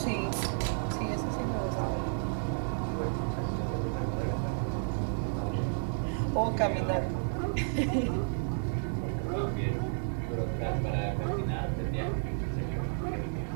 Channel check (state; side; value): silent; left; digital silence